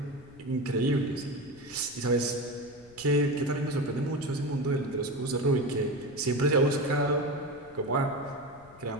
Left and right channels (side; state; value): left; noise; rumble, 24 dB below the sound